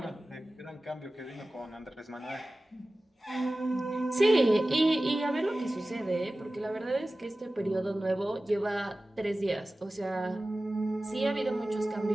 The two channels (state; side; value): normal; both; correlation 0.96